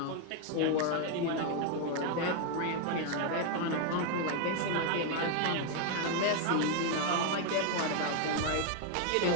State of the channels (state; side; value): different; both; correlation 0.00